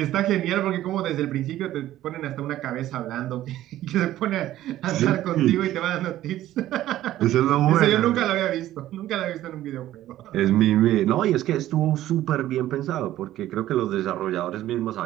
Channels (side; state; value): left; quieter; 13.8 dB